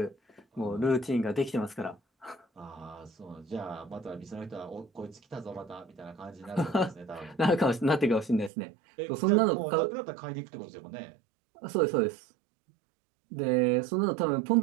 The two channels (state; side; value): drops out; left; at 8.5 s